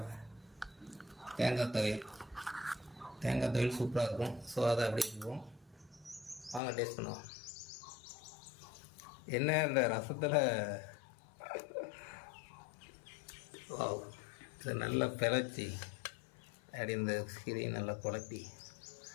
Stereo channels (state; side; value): drops out; right; at 6.6 s